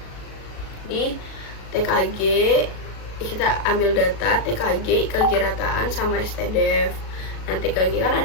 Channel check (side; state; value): right; late; 37 ms